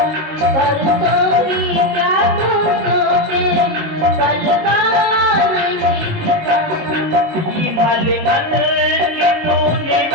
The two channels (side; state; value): left; late; 19 ms